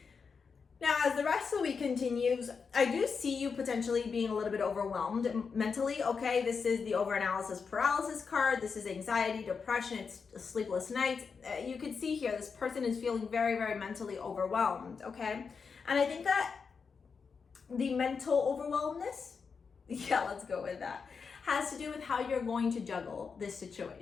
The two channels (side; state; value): right; quieter; 5.5 dB